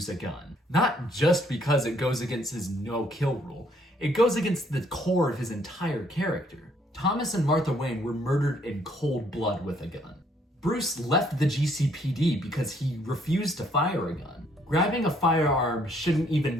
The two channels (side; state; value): both; normal; correlation 0.66